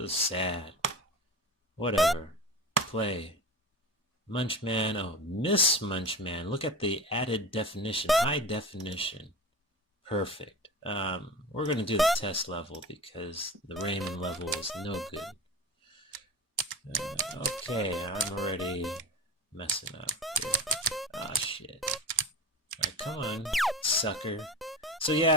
sad. Whatever. Play. Munchman. Oh, Miss Munchman. Look at the added definition. High definition. Perfect. We're going to do the test level because the Raymond level is no good. Okay, I'm already messing up here. Ah, shit. Alright, come on, sucker. So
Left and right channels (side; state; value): both; normal; correlation 0.30